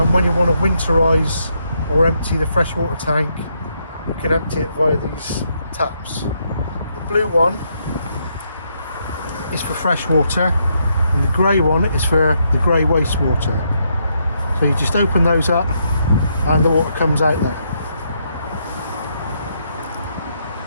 When you want to winterize or empty the freshwater tank, you can empty it via these taps. The blue one is for fresh water, and the grey one is for the grey wastewater. So you just open those up and the water comes out there.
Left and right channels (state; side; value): inverted; both; correlation -0.77